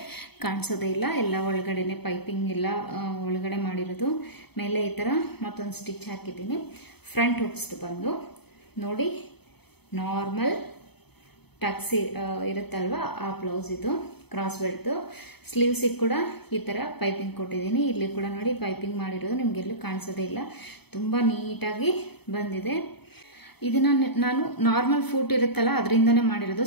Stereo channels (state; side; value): late; right; 0.98 ms